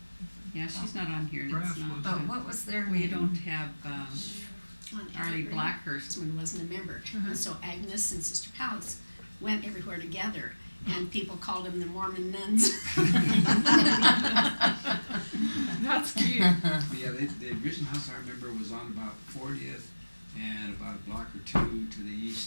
Yeah, she's not on here, and Brass it's not. was. But what was their We name? don't have, On Arlie Evergreen. Blackhurst. When wasn't a member. And so Agnes and Sister Pals went everywhere together, and people called them the Mormon Nuns. That's cute. Yeah, the original house I remember was on about 40th and about a block or two to the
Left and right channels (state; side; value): inverted; both; correlation -1.00